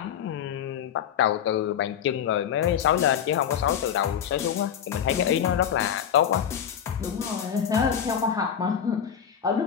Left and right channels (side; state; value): right; quieter; 8.7 dB